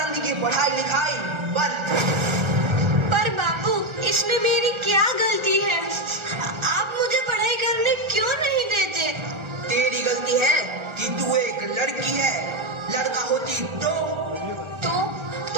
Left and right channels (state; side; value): late; left; 1.4 ms